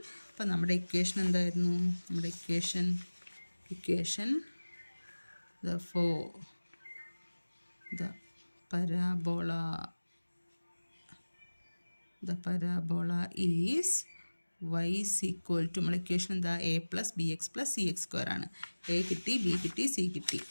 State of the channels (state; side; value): inverted; both; correlation -1.00